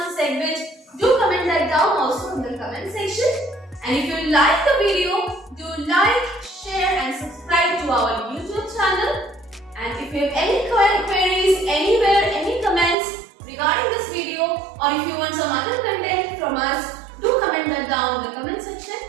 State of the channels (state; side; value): drops out; left; at 13.0 s